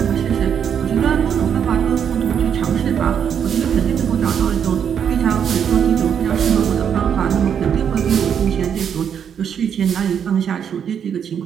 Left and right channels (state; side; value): quieter; left; 8.1 dB